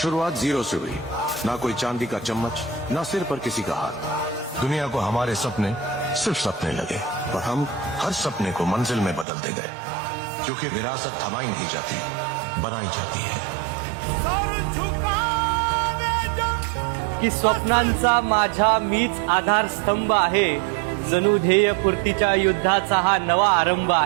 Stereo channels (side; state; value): left; drops out; at 9.2 s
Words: जीरो से हुई, ना कोई चांदी का चम्मच, ना सिर पर किसी का हाथ। दुनिया को हमारे सपने सिर्फ सपने लगे और हम हर सपने को मंजिल में बदलते गए, क्योंकि विरासत थमाई नहीं जाती, बनाई जाती है। की स्वप्नांचा माझा मीच आधारस्तंभ आहे, जणू ध्येय पूर्तीच्या युद्धाचा हा नवा आरंभ